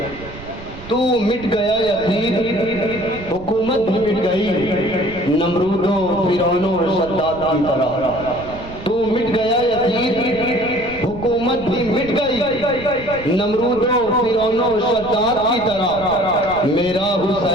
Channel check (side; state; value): right; noise; rumble, 16 dB below the sound